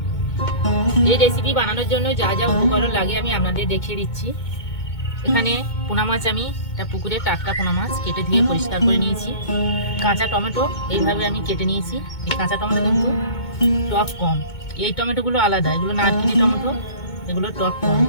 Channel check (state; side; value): late; right; 2.2 ms